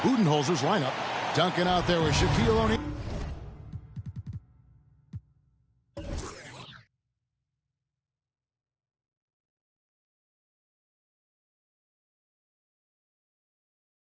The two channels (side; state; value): both; identical; correlation 1.00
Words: Budenholzer's lineup. Duncan out there with Shaquille O'Neal.